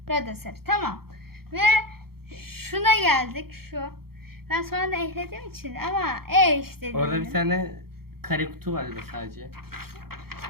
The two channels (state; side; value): late; left; 0.94 ms